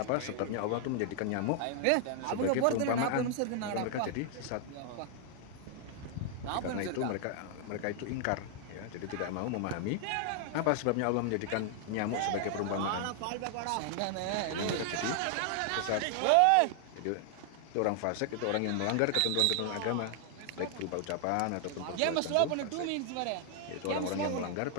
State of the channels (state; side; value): different; both; correlation 0.00